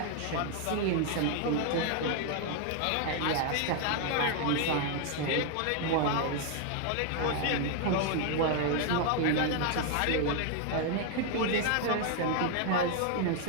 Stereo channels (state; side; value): different; both; correlation 0.00